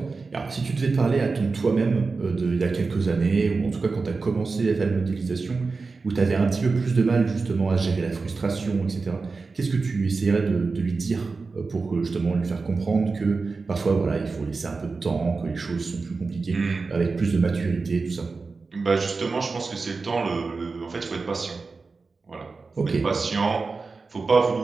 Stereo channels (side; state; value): left; quieter; 4.2 dB